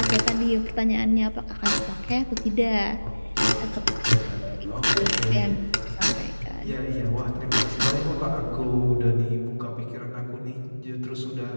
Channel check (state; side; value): inverted; both; correlation -1.00